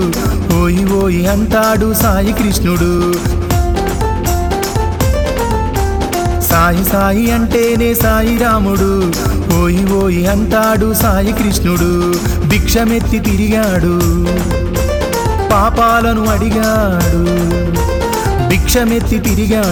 ఓయి ఓయి అంటాడు సాయి కృష్ణుడు. సాయి సాయి అంటేనే సాయి రాముడు, ఓయి ఓయి అంటాడు సాయి కృష్ణుడు. భిక్షమెత్తి తిరిగాడు, పాపాలను అడిగాడు. భిక్షమెత్తి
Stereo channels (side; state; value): both; identical; correlation 1.00